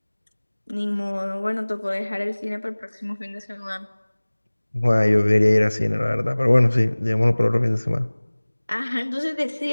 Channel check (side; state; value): both; inverted; correlation -1.00